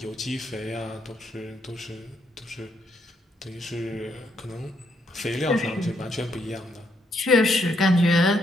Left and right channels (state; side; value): normal; both; correlation 0.75